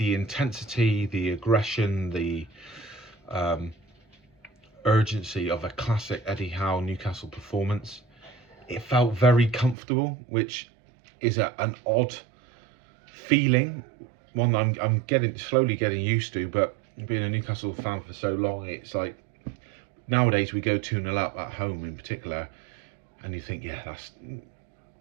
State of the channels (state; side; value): drops out; left; at 9.8 s